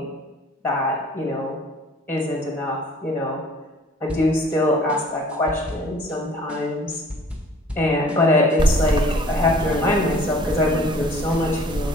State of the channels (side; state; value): both; normal; correlation 0.51